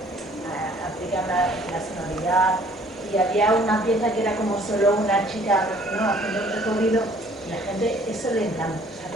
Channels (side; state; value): both; normal; correlation 0.57